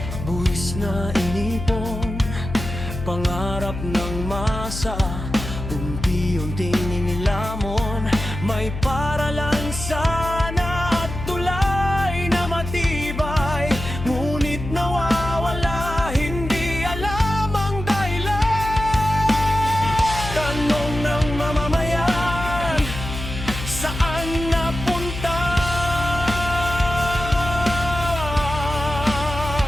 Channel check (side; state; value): left; noise; hum, 8 dB below the sound